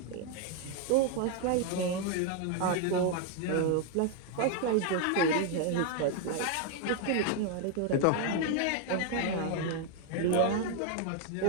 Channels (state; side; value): different; both; correlation 0.01